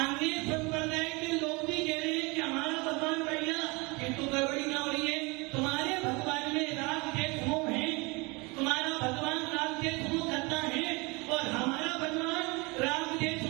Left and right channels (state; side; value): quieter; left; 27.0 dB